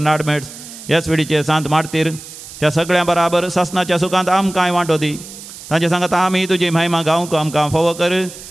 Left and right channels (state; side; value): noise; right; hiss, 15 dB below the sound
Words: येसविडीचे सांत मार्तीर, त्या सगळ्यां बराबर सासनाच्या सुखांत आमकांय वांटो दी. तांचे सांगात आमी तुजी महिमा गावंक आमकां फावो कर.